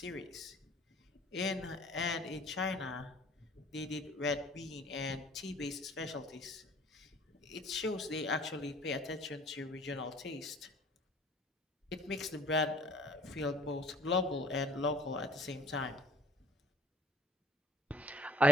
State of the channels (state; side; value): normal; both; correlation 0.53